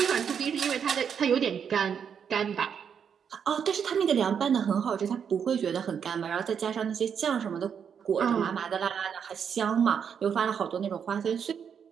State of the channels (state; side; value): quieter; left; 7.4 dB